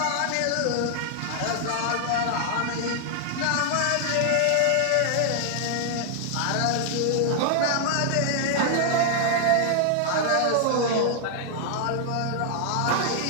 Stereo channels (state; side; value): different; both; correlation -0.01